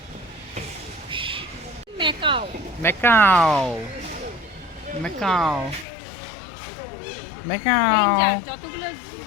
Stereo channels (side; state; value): right; drops out; at 5.9 s